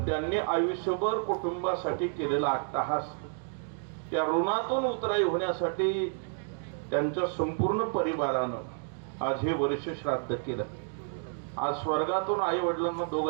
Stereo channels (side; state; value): left; silent; 58 dB below the other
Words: त्यांनी आयुष्यभर कुटुंबासाठी केलेला अट्टहास, त्या ऋणातून उतराई होण्यासाठी त्यांच्या संपूर्ण परिवारानं आज हे वर्ष श्राद्ध केलं. आज स्वर्गातून आई वडिलांना